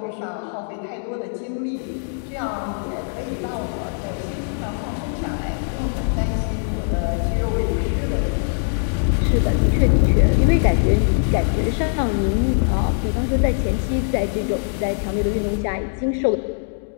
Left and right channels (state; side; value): silent; right; digital silence